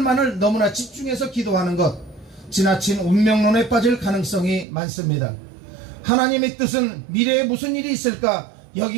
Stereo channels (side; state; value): left; drops out; at 4.7 s